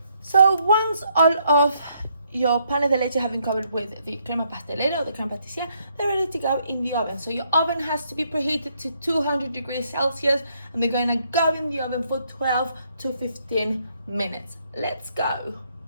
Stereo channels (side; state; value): both; inverted; correlation -0.72